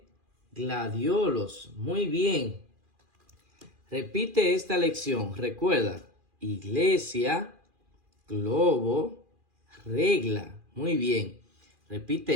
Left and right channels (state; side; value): late; left; 2.4 ms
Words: gladiolos. Muy bien. Repite esta lección. Recuerda, iglesia, globo, regla. Muy bien.